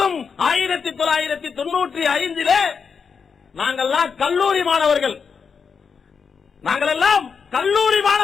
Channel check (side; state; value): right; quieter; 6.0 dB